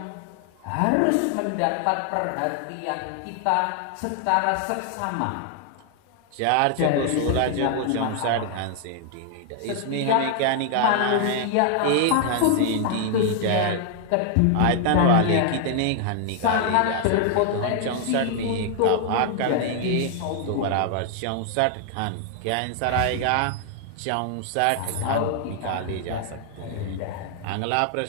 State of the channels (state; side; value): different; both; correlation 0.00